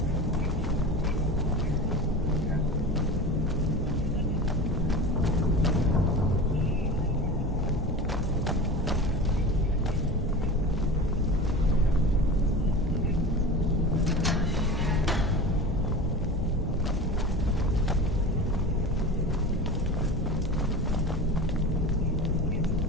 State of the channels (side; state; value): both; normal; correlation 0.31